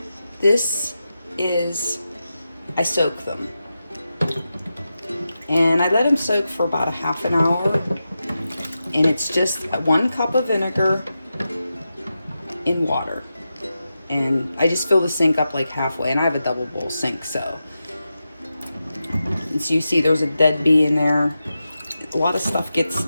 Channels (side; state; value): both; inverted; correlation -0.90